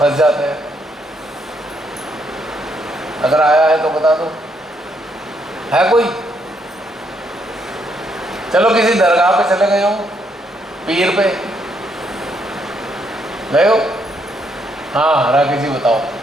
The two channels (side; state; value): both; normal; correlation 0.74